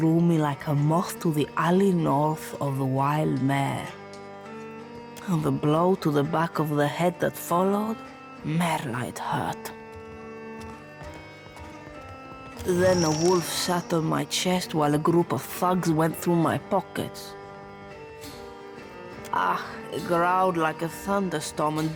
me like a moth to the alley north of the wild mare. And the blow to the back of the head that followed, Merla, it hurt. Then a wolf sat on my chest while a group of thugs went through my pockets. Ah, it growled like a thunderstorm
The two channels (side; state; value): both; identical; correlation 1.00